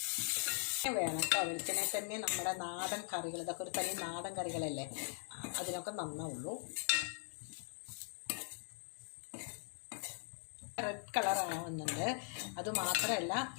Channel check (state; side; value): silent; right; 51 dB below the other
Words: വേണം കേട്ടോ. വെളിച്ചെണ്ണ തന്നെ നമ്മുടെ നാടൻ കറികൾ, ഇതൊക്കെ ഒരു തനി നാടൻ കറികളല്ലേ, അതിനൊക്കെ നന്നാവുള്ളൂ. റെഡ് കളർ ആവുന്നുണ്ട്. അതുമാത്രമല്ല